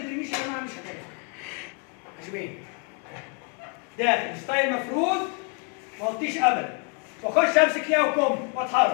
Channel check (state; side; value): quieter; right; 36.7 dB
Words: يا جماعه مش هتنفع. عجبين داخل ستايل مفروض ما اغطيش ابدا، واخش امسك ليها وكم